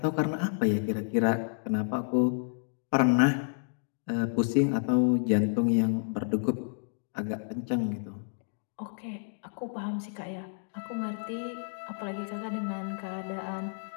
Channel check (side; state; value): right; silent; digital silence